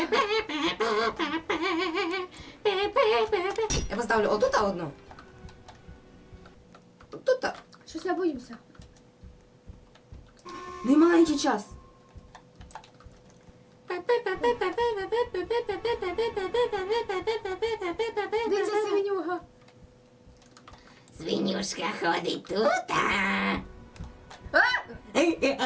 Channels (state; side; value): identical; both; correlation 1.00